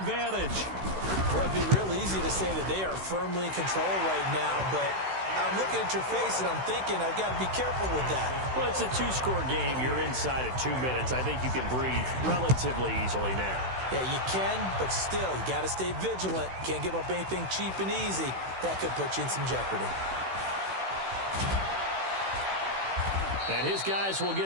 Well, it'd be real easy to say that they are firmly in control right now, but I'm looking at your face and I'm thinking I've got to be careful with that. Well, it's a two-score game. You're inside at 2 minutes. I think you can breathe relatively easily now. Yeah, you can, but still, you got to stay vigilant. Can't give up anything cheap and easy. That could put you in some jeopardy. And his guys will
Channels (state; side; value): late; left; 16 ms